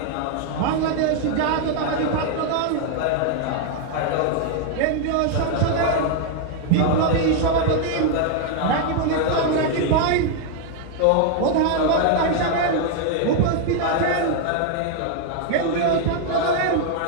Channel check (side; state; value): both; different; correlation 0.00